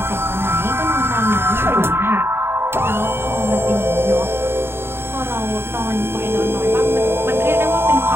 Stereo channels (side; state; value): left; late; 0.11 ms